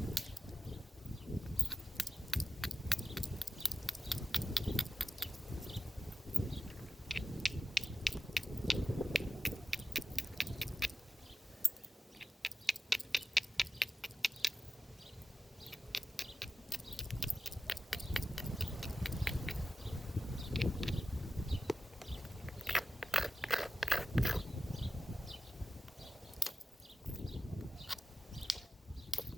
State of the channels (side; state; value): both; normal; correlation 0.93